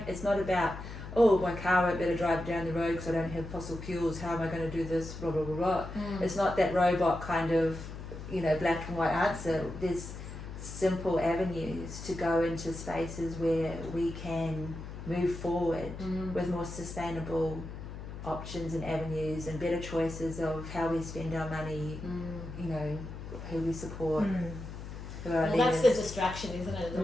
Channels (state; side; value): noise; left; hum, 10 dB below the sound